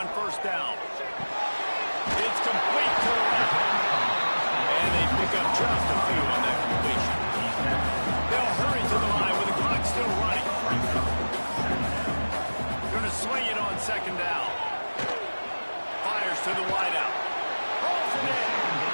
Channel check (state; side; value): inverted; both; correlation -1.00